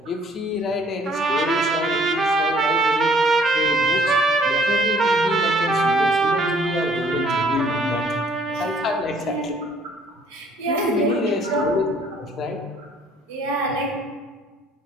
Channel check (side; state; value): both; normal; correlation 0.59